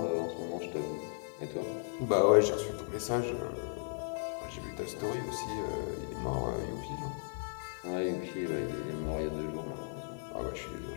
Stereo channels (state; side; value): silent; right; 54 dB below the other